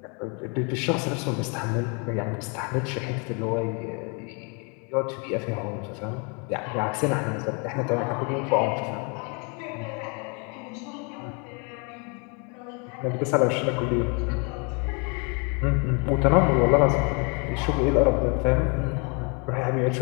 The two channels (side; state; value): right; quieter; 34.5 dB